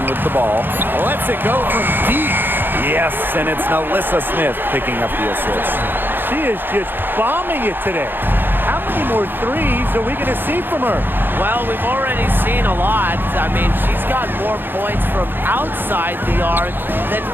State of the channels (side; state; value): left; late; 0.097 ms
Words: with the ball. Lets it go from deep. Yes, and it's Melissa Smith picking up the assist. She is just bombing it today. How many more threes are we going to see from her? Well, we've already seen a lot. I mean, she's got more points from outside the arc than